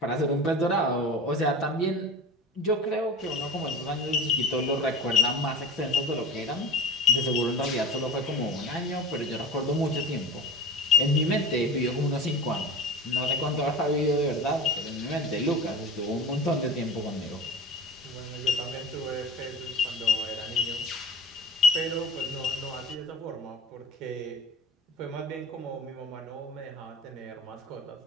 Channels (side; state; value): both; normal; correlation 0.34